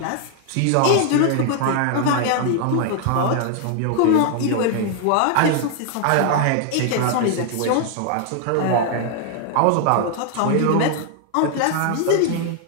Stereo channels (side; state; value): both; different; correlation 0.00